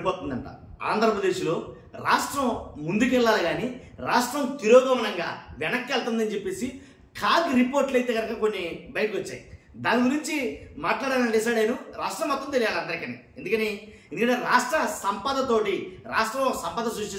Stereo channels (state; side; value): identical; both; correlation 1.00